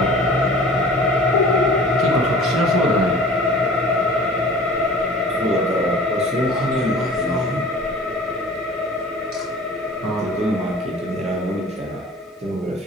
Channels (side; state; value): both; normal; correlation 0.44